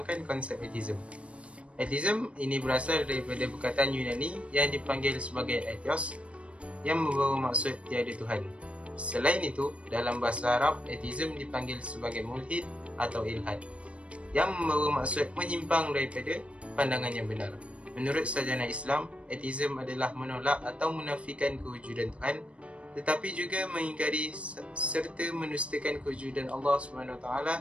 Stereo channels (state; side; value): late; left; 0.061 ms